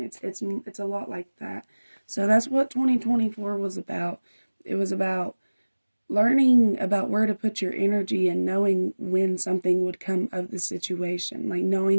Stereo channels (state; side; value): inverted; both; correlation -1.00